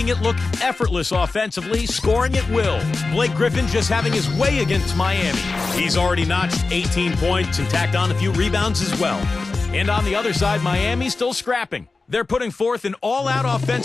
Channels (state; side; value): quieter; right; 3.8 dB